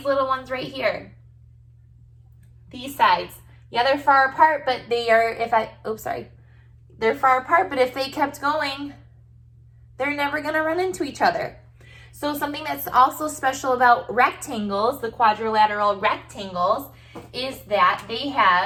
little ones right here. These sides. Yeah, they're far apart, but they are, they're far apart, but if they kept going, they're never gonna run into each other. So something that's also special about rectangles, the quadrilateral rectangles, is that they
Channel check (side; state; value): both; identical; correlation 1.00